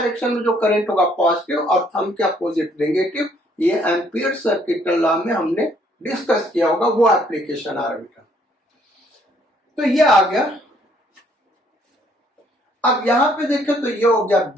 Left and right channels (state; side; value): normal; both; correlation 0.65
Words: में जो करंट होगा पॉजिटिव और थंब के अपोजिट नेगेटिव। ये एम्पियर सर्किट लॉ में हमने डिस्कस किया होगा, वो एप्लीकेशन आ रहा बेटा। तो ये आ गया। अब यहां पे देखें तो ये हो गया